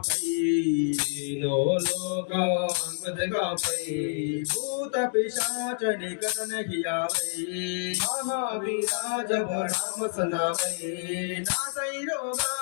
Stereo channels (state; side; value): silent; right; digital silence